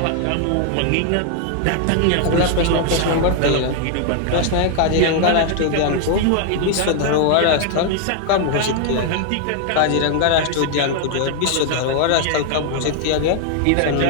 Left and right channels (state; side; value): different; both; correlation 0.00